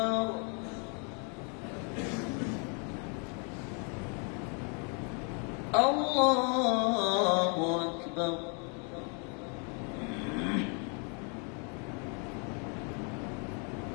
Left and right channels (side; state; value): right; quieter; 37.7 dB